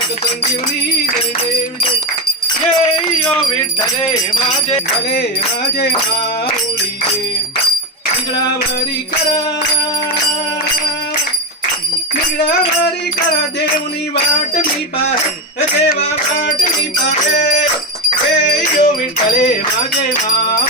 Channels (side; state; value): both; normal; correlation 0.14